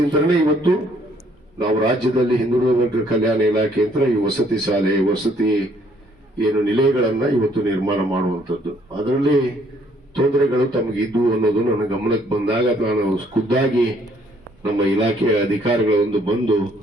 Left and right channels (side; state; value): both; normal; correlation 0.65